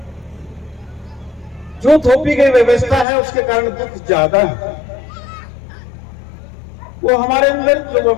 जो थोपी गई व्यवस्था है उसके कारण दुख ज्यादा है। वो हमारे अंदर जो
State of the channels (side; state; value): right; drops out; at 3.1 s